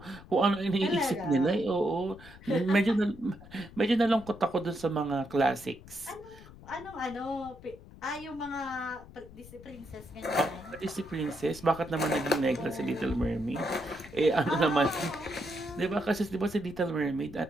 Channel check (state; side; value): noise; left; rumble, 19 dB below the sound